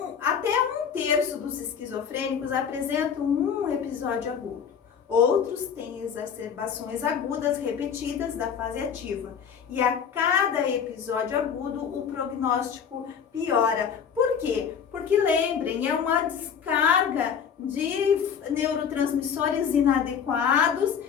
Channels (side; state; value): right; quieter; 7.4 dB